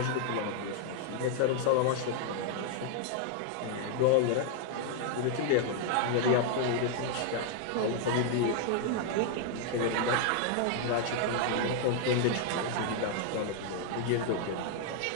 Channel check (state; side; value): different; both; correlation 0.00